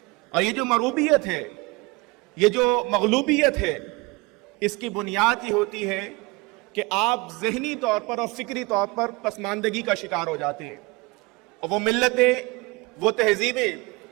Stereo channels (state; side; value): quieter; left; 24.9 dB